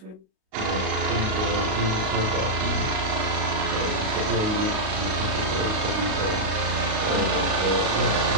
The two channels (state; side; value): late; left; 38 ms